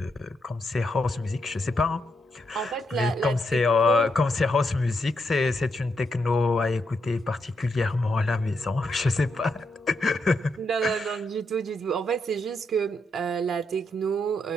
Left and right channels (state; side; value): normal; both; correlation 0.80